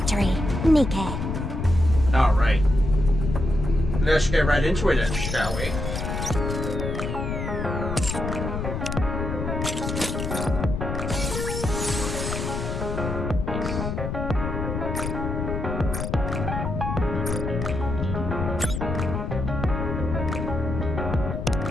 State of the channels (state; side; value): noise; left; rumble, 3 dB below the sound